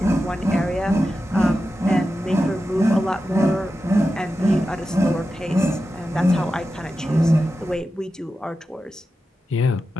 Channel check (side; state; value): both; normal; correlation 0.91